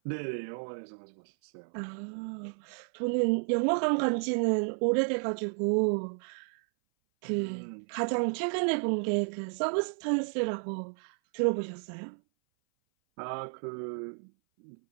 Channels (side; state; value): left; silent; 57 dB below the other